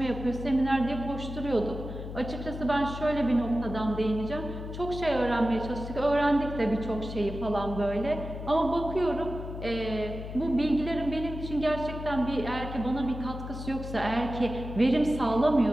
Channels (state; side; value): noise; left; hum, 8 dB below the sound